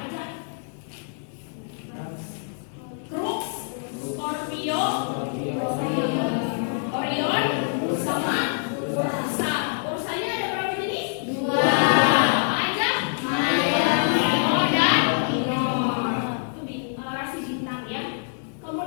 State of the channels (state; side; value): silent; right; digital silence